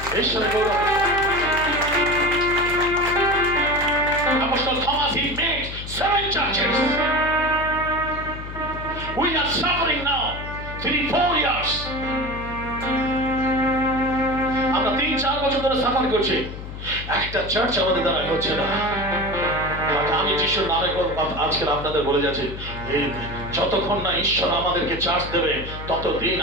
ঈশ্বরের গৌরব। Apostle Thomas, he made 7 churches. We are suffering now 3-4 years. আমরা 3-4 বছর ধরে সাফার করছি, একটা চার্চ আমাদের দ্বারা হচ্ছে না। আমি যিশুর নামে আজকে আপনাদের বলে যাচ্ছি, এই যতক্ষণ না ঈশ্বর আমাদেরকে চার্জ দেবে ততদিন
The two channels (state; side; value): noise; left; hum, 10 dB below the sound